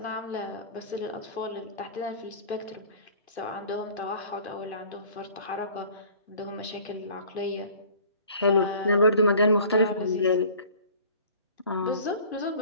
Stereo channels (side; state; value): both; inverted; correlation -0.48